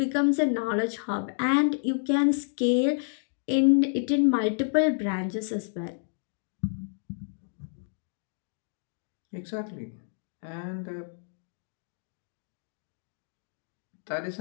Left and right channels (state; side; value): silent; right; digital silence